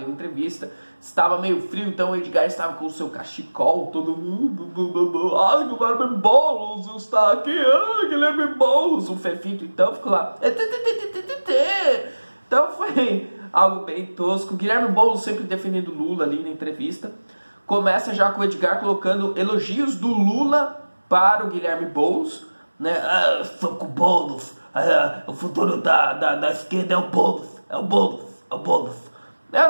entrevista, estava meio frio, então o Edgar estava com o seu cachecol, todo mundo, ai, Guilherme Boulos está aqui, ai, Guilherme Boulos, o Fefito, então ficou lá, então foi algo bem tosco. O Guilherme Boulos sempre defendendo Lula ali na entrevista, começa já com o Edgar colocando elogios do Lula para o Guilherme Boulos, né? Ah, sou com o Boulos, o futuro da esquerda é o Boulos, é o Boulos, é o Boulos.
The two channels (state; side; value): inverted; both; correlation -1.00